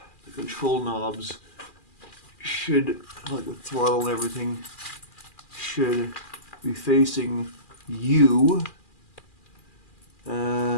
control knobs should, like the throttle and everything, should be facing you.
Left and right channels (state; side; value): late; right; 2.4 ms